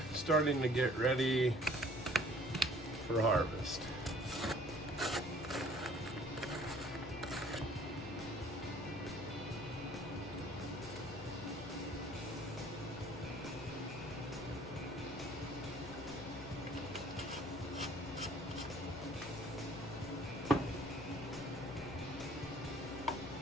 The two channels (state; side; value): noise; left; hum, 12 dB below the sound